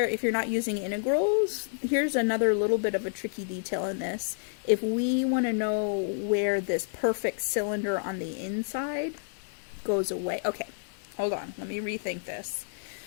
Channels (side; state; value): right; silent; digital silence